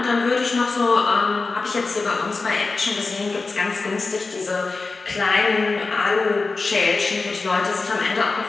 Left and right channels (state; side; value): quieter; right; 3.9 dB